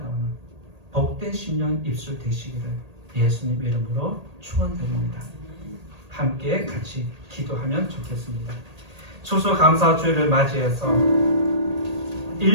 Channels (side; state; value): left; late; 1.8 ms